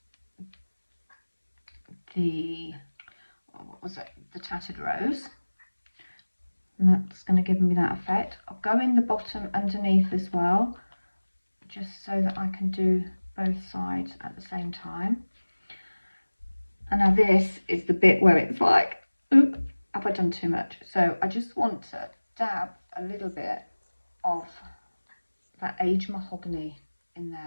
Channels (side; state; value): both; inverted; correlation -1.00